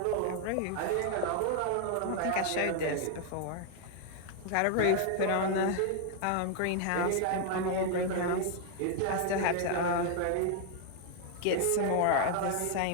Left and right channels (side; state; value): both; different; correlation 0.00